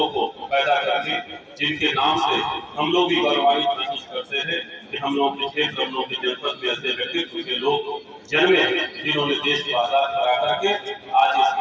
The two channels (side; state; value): both; identical; correlation 1.00